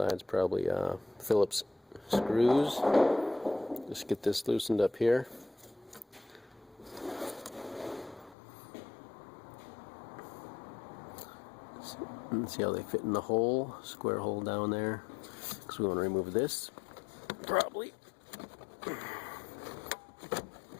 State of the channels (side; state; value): right; drops out; at 8.3 s